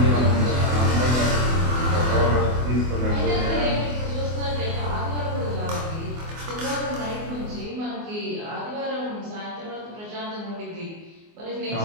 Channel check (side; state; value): left; late; 24 ms